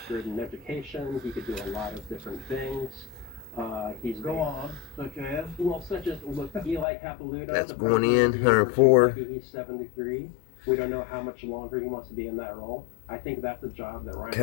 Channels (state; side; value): drops out; right; at 6.9 s